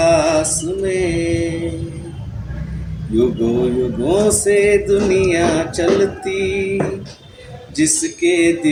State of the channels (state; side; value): identical; both; correlation 1.00